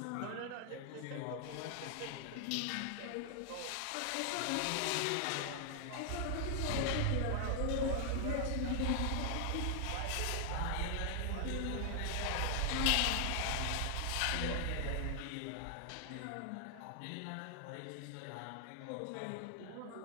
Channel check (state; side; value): different; both; correlation 0.00